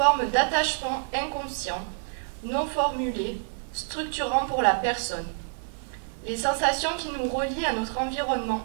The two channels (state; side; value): silent; left; digital silence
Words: d'attachement inconscient, non formulé, structurant pour la personne. Les sensations qui nous relient à notre